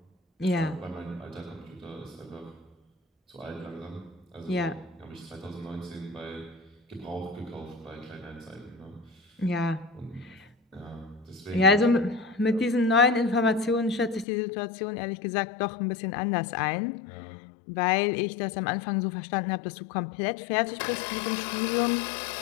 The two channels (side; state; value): right; drops out; at 14.2 s